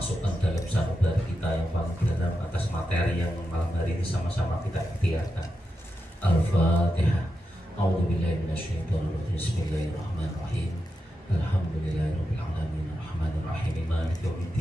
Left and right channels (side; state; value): both; normal; correlation 0.88